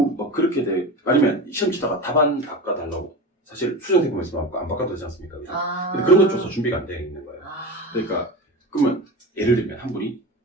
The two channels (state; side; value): normal; both; correlation 0.27